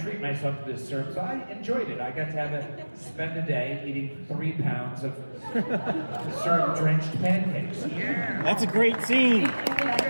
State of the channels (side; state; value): both; inverted; correlation -1.00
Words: myself to this syrup, so I enjoyed it. I got to spend a day eating 3 pounds of syrup-drenched pancakes. Yeah, That's a great scene.